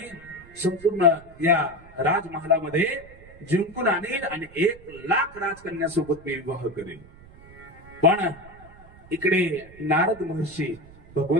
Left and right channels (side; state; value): right; noise; rumble, 22 dB below the sound